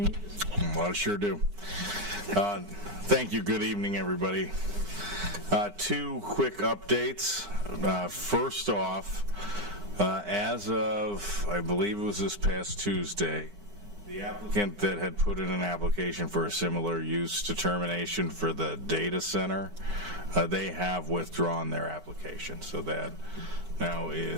Well, I sure do. Thank you. Good evening, everybody. Two quick updates. First off, as of, I believe it was this past Tuesday, the applicant that had put in an application for a similar use determination for the data center, they have withdrawn their application. So that now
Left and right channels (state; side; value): late; left; 9.8 ms